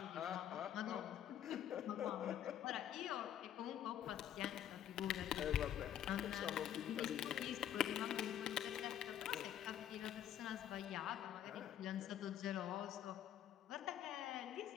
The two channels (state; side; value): quieter; right; 10.6 dB